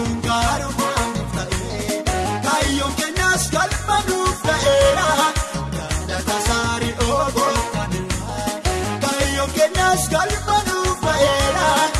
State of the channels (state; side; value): identical; both; correlation 1.00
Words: gaarumaan ta'ee kaayyoon keenyas galma nuuf ta'eera galata saarii ogootaniira kaayyoon keenyas galma nuuf ta'eera